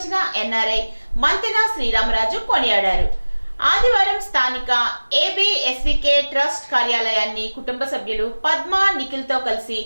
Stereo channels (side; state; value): both; inverted; correlation -1.00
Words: ఎన్ఆర్ఐ మంతెన శ్రీరామరాజు కొనియాడారు। ఆదివారం స్థానిక ఏబిఎస్వికే ట్రస్ట్ కార్యాలయాన్ని కుటుంబ సభ్యులు పద్మ, నిఖిల్ తో కలిసి